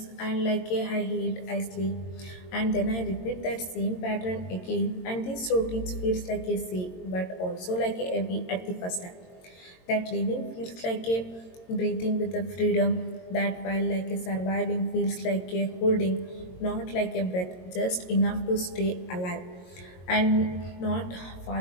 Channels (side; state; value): right; late; 22 ms